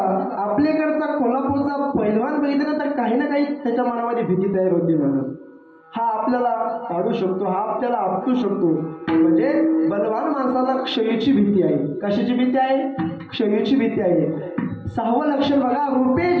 आपल्याकडचा कोल्हापूरचा पैलवान बघितला तर काही ना काही त्याच्या मनामध्ये भीती तयार होती. म्हणून हा आपल्याला पाडू शकतो, हा आपल्याला आपटू शकतो. म्हणजे बलवान माणसाला क्षयीची भीती आहे. कशाची भीती आहे? क्षयीची भीती आहे. 6वं लक्षण बघा, रूपे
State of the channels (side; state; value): both; identical; correlation 1.00